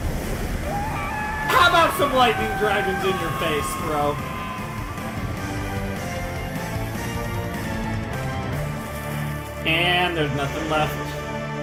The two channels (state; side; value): identical; both; correlation 1.00